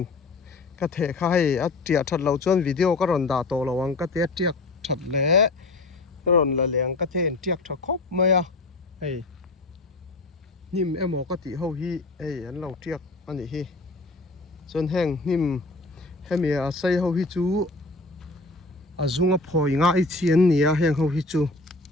ka the kha hei a tia that lo chuan video ka ron da to lawang ka te tiak that le ka ron la leng ka the tiak tha khop mai a hei nim emo ka ti ho hi ei an lo tiak ani hi chuan heng nim hemi a sei ho hi chu a zunga phoi nga I chian nia heng ho hi chu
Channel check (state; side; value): quieter; right; 3.2 dB